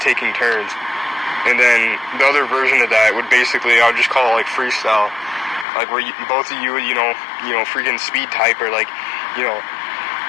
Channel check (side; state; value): right; drops out; at 5.7 s